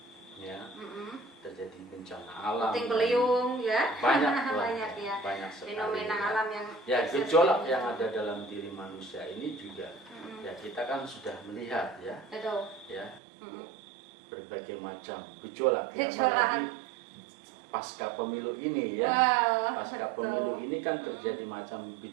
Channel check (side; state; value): left; drops out; at 13.2 s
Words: Terjadi bencana alam, puting beliung, ya. banyak Banyak, ya. banyak sekali Fenomena alam yang ya gejolak yang ada dalam diri manusia ini juga ya kita kan sudah melihat ya, Betul. ya berbagai macam gejolak, ya. Gejolak. Apalagi pasca pemilu ini ya. Wow, Pasca betul. pemilu ini kan terjadi macam